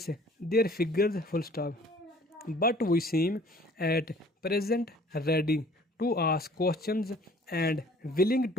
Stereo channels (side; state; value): both; normal; correlation 0.53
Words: their figures, full stop. But we seem at present ready to ask questions and willing